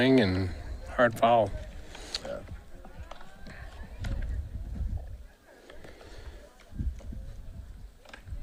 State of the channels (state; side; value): identical; both; correlation 1.00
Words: and hard foul. Yeah.